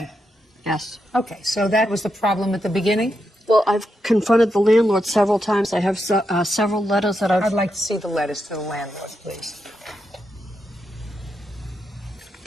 Yes. Okay, so that was the problem at the beginning? Well, I've confronted the landlord several times. I have several letters that I'd like to see the letters to the landlord, please.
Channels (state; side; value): normal; both; correlation 0.84